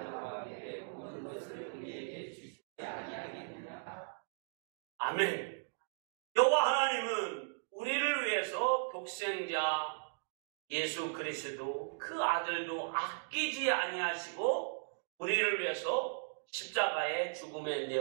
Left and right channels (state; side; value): silent; left; digital silence